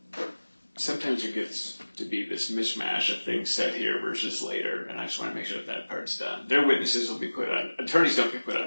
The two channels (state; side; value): inverted; both; correlation -1.00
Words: sometimes there gets to be this mishmash of things said here versus later, and I just want to make sure that part's done. Their witnesses will be put on, attorneys don't get put